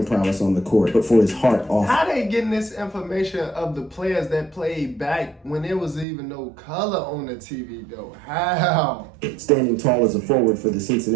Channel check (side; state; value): left; drops out; at 6.1 s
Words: prowess on the court, but for his heart off. How they getting this information of the players that played back when there was even no color on the TV though? How? Standing tall as a forward for the